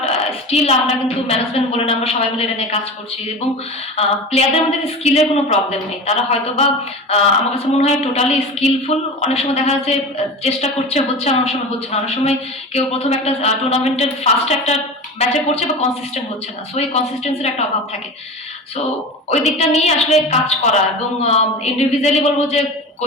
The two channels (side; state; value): both; normal; correlation 0.30